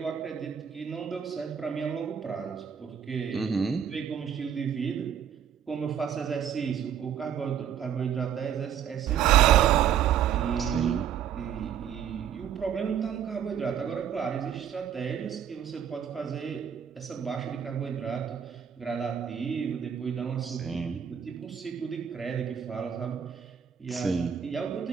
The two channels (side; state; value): left; quieter; 8.7 dB